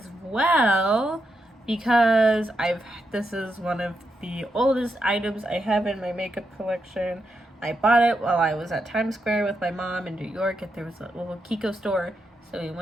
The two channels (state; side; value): normal; both; correlation 0.84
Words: well because this is one of the oldest items I have in my makeup collection. I bought it while I was at Times Square with my mom in New York. There was a little Kiko store, so we